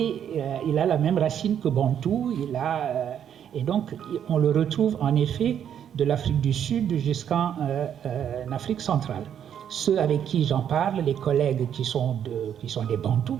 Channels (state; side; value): quieter; left; 9.1 dB